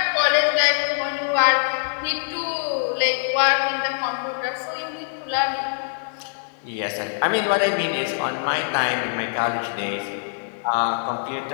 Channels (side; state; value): right; silent; digital silence